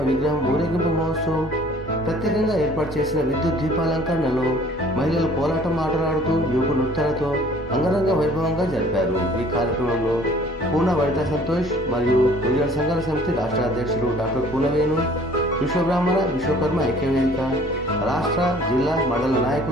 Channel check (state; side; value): noise; right; rumble, 22 dB below the sound